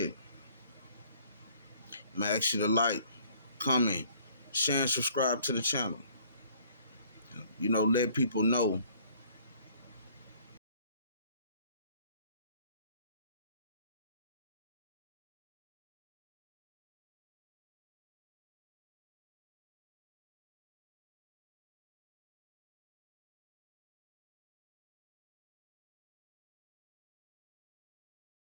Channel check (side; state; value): both; inverted; correlation -0.58